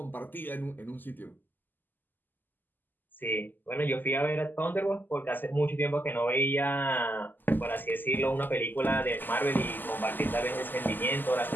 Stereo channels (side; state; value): right; late; 0.089 ms